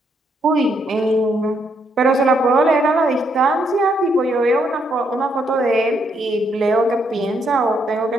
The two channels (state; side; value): normal; both; correlation 0.74